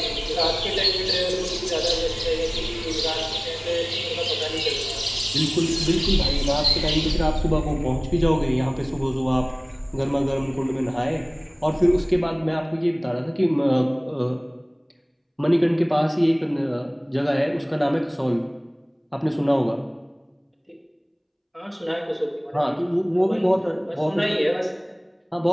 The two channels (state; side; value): identical; both; correlation 1.00